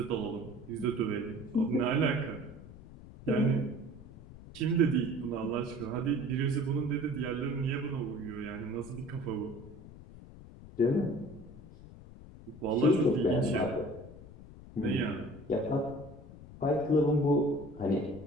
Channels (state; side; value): noise; left; rumble, 17 dB below the sound